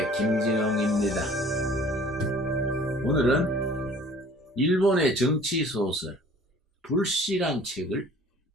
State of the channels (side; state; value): both; normal; correlation 0.50